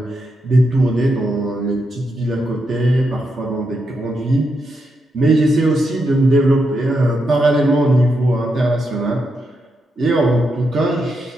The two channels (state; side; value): normal; both; correlation 0.83